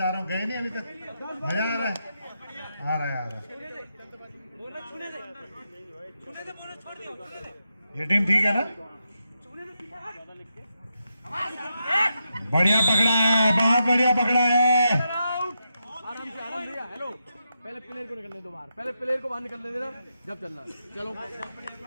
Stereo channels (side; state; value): both; inverted; correlation -0.85